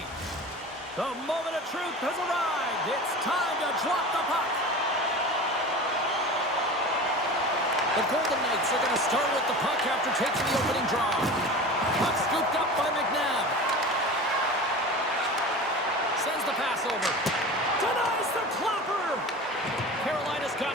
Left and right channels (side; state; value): both; normal; correlation 0.34